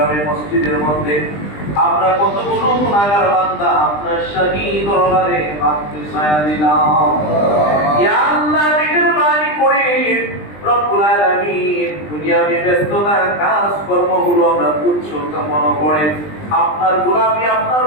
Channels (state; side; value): late; right; 20 ms